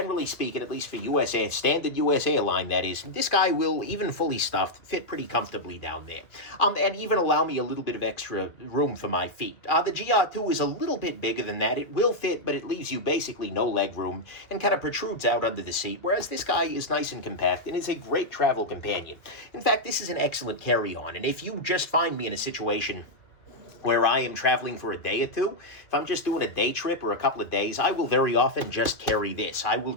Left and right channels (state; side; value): late; right; 2.1 ms